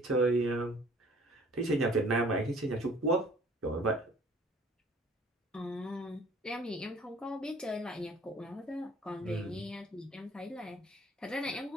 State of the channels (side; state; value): both; normal; correlation 0.53